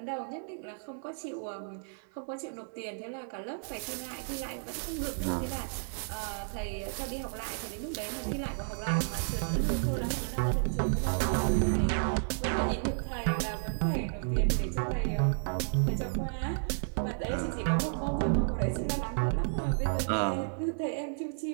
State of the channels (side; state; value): left; silent; digital silence